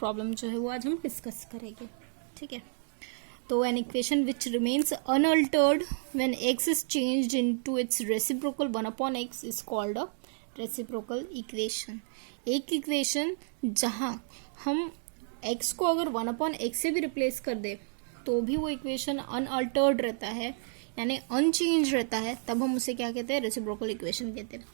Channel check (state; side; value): silent; left; digital silence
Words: जो है वो आज हम डिस्कस करेंगे. ठीक है, तो an equation which remains unaltered when x is changed into its reciprocal 1/x is called a reciprocal equation. एक इक्वेशन जहां हम x को अगर 1/x से भी रिप्लेस कर दे तो भी वो इक्वेशन अनअल्टर्ड रहता है, यानी अनचेंज रहता है, तब हम उसे क्या कहते हैं? रेसिप्रोकल इक्वेशन कहते हैं.